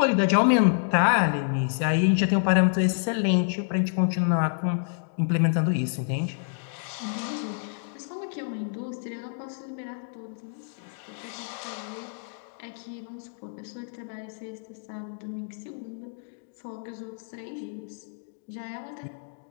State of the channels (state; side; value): silent; right; digital silence